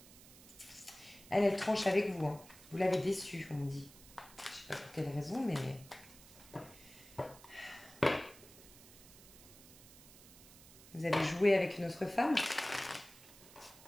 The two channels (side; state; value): right; noise; hiss, 20 dB below the sound